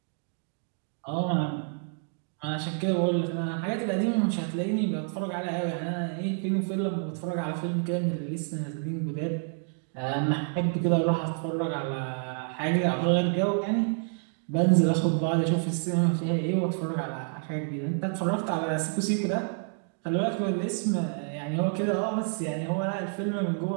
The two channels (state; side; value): silent; left; 57 dB below the other